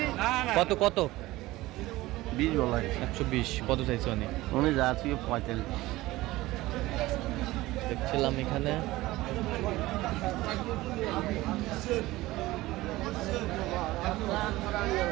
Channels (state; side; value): quieter; left; 18.3 dB